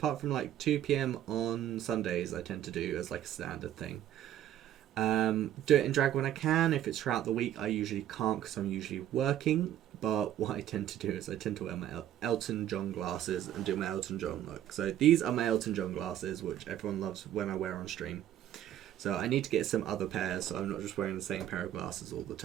from like 2 PM on Sundays I tend to do as like a standard thing. Do it in drag when I can. If it's throughout the week I usually can't because I'm usually working, but what I tend to do is I tend to wear my Elton John glasses and do my Elton John look. So these are my Elton John glasses, which everyone loves when I wear on stream. So I need to get some other pairs so I'm not just wearing the same pair of glasses all the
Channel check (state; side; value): quieter; left; 11.7 dB